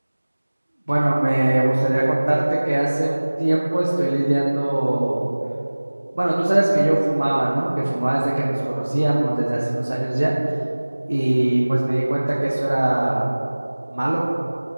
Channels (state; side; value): inverted; both; correlation -1.00